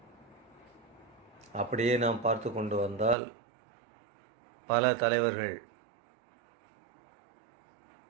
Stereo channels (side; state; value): left; drops out; at 3.2 s